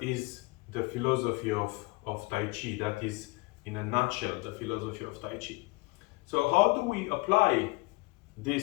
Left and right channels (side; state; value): right; quieter; 24.7 dB